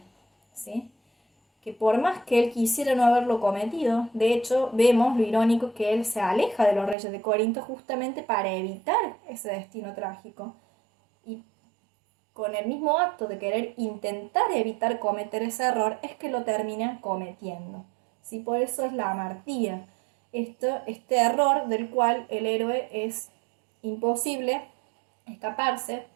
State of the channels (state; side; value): drops out; left; at 7.0 s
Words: ¿sí?, que por más que él quisiera no haberlo cometido, de hecho vemos lo irónico que él se aleja de los reyes de Corinto justamente para evitar ese destino trágico. Y con el mismo acto de querer intentar evitar cometer ese error es que lo termina cometiendo. ¿Sí? Por eso es la amartía, este error del cual el héroe es imposible escaparse